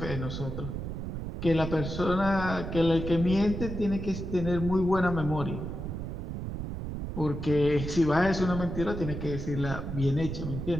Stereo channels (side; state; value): right; noise; rumble, 5 dB below the sound